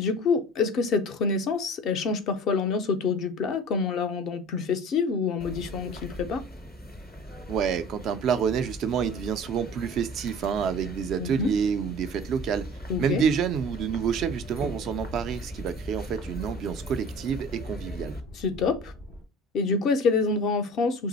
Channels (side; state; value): both; normal; correlation 0.42